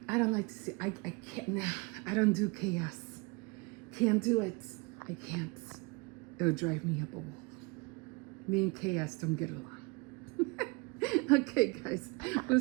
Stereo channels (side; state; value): left; quieter; 27.4 dB